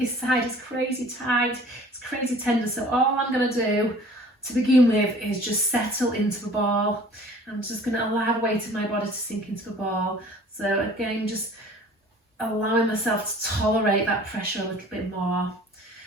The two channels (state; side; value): normal; both; correlation 0.49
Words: side is crazy tight, it's crazy tender, so all I'm going to do to begin with is just settle into the ball. I'm just going to allow the weight of my body to sink into the ball. So again, just allowing myself to tolerate that pressure a little bit more.